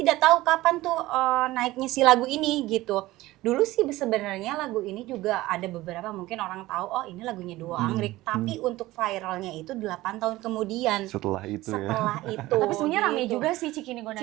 tahu kapan tuh naiknya si lagu ini gitu. Dulu sih sebenarnya lagu ini juga ada beberapa mungkin orang tahu oh ini lagunya Duo Anggrek, tapi untuk viralnya itu 8 tahun kemudian. Setelah itu ya. Setelah itu. Tapi sebenarnya rame gitu. juga sih Cikini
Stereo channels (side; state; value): left; quieter; 17.8 dB